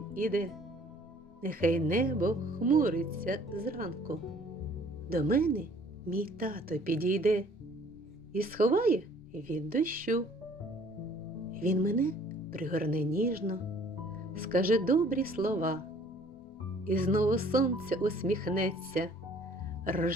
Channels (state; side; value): normal; both; correlation 0.56